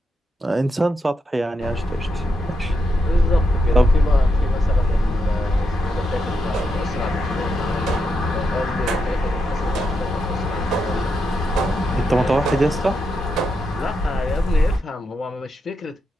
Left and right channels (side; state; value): both; normal; correlation 0.83